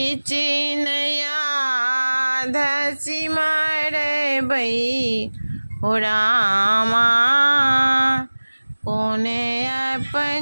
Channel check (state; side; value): inverted; both; correlation -1.00